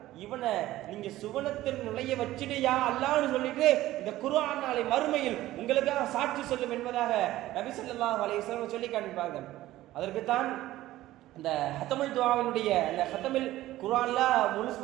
இவனை நீங்க சுவனத்தில் நுழைய வச்சிடுயா அல்லாஹ்னு சொல்லிட்டு இந்த குர்ஆன் நாளை மறுமையில் உங்களுக்காக சாட்சி சொல்லும் என்பதாக நபி ஸல்லல்லாஹு அலைஹி வஸல்லம் சொல்லி காண்பிப்பார்கள். அதற்குத்தான் இந்த ஹத்தமுல் துஆவினுடைய அந்த ஹத்தமில் குர்ஆன்ல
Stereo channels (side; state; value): left; quieter; 15.5 dB